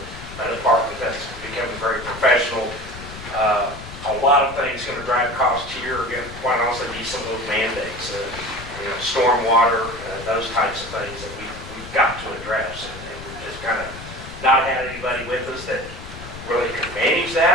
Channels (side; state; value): left; noise; rumble, 13 dB below the sound